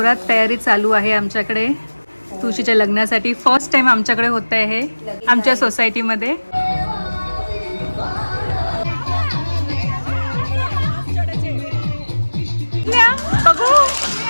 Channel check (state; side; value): inverted; both; correlation -1.00